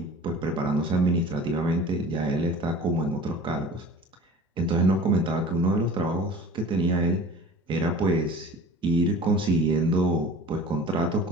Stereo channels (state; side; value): normal; both; correlation 0.42